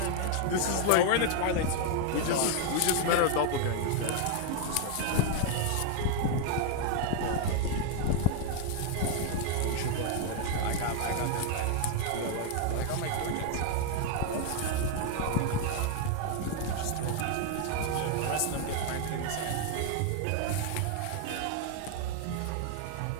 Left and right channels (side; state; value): both; different; correlation 0.00